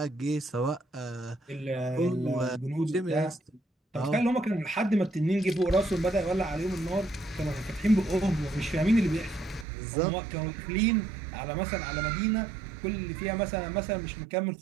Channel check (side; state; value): left; drops out; at 9.7 s